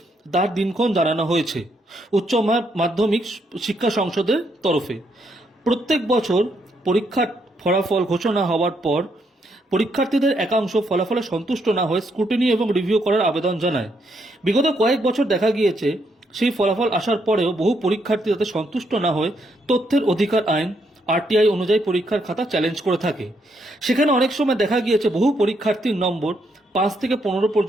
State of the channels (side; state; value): both; normal; correlation 0.76